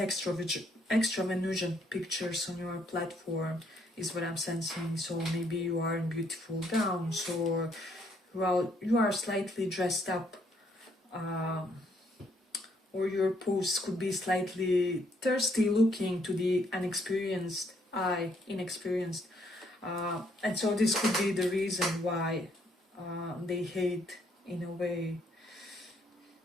Venusian pictures on your platform, is what I'm sensing. So maybe you are in beautiful gowns, or well, you are slightly dressed up, or your posts could be slightly thirsty looking to the inexperienced eye, and so this could be the reason why they hate in a way.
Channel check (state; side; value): normal; both; correlation 0.70